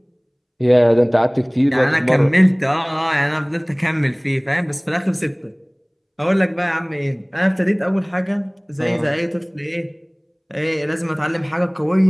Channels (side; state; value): both; identical; correlation 1.00